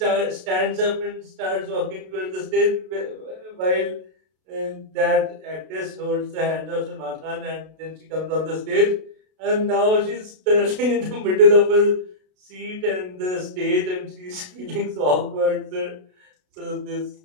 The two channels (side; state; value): left; late; 32 ms